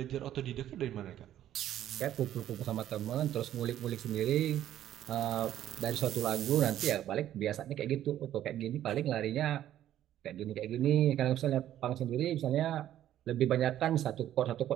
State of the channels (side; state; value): left; quieter; 12.0 dB